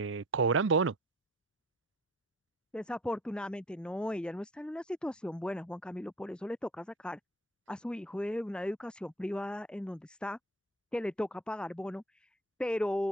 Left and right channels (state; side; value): normal; both; correlation 0.43